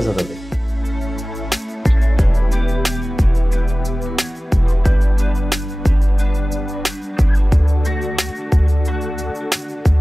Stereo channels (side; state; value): both; normal; correlation 0.97